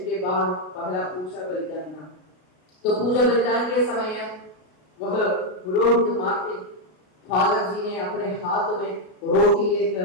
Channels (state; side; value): late; right; 33 ms